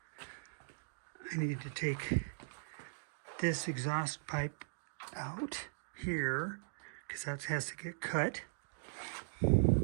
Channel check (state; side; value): silent; left; digital silence